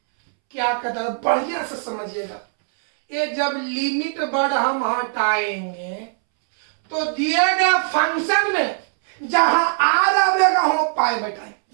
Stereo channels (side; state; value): left; silent; 65 dB below the other